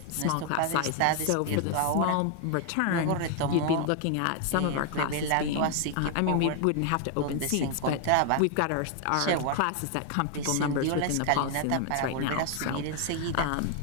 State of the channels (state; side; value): different; both; correlation 0.00